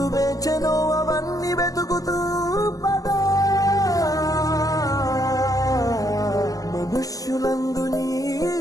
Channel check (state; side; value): late; right; 0.17 ms